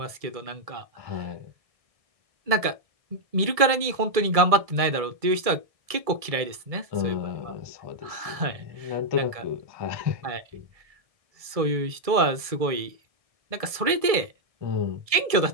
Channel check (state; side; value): late; left; 1.6 ms